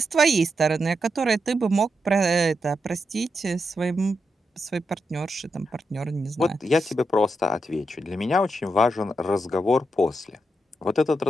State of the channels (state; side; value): normal; both; correlation 0.84